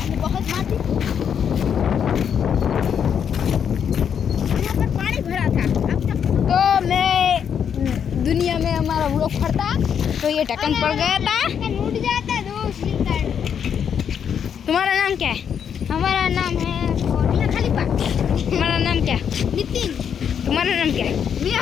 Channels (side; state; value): right; quieter; 7.9 dB